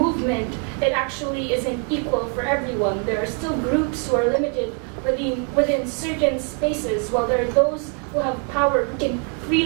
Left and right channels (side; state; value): left; quieter; 37.4 dB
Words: it actually isn't equal for everyone. There are still groups who are limited within certain spaces, while there are those who have power who can